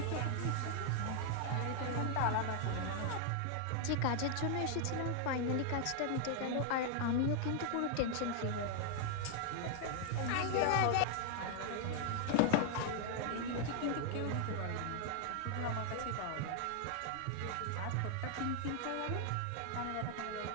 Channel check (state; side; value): different; both; correlation 0.00